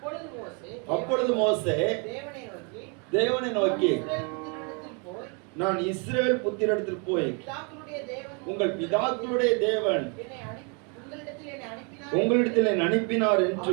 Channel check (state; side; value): quieter; left; 35.4 dB